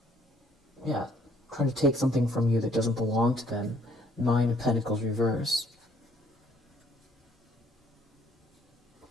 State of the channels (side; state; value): both; normal; correlation 0.63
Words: Yeah, trying to take something from you that doesn't belong to them. Nine of Pentacles reverse.